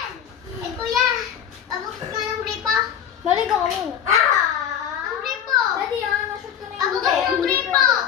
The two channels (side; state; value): right; quieter; 9.0 dB